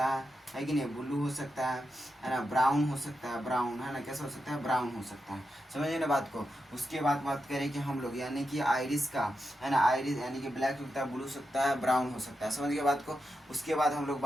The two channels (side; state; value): both; normal; correlation 0.88